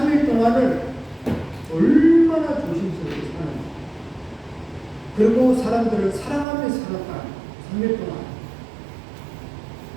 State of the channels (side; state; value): left; drops out; at 6.5 s